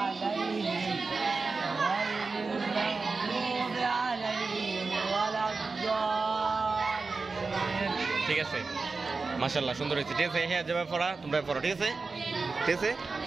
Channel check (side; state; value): left; quieter; 4.1 dB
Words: ঠিক আছে মাশাআল্লাহ সুন্দর হয়েছে ঠিক আছে হ্যাঁ যাবে পড়া তোমরা পড়ো ঠিক আছে ঠিক আছে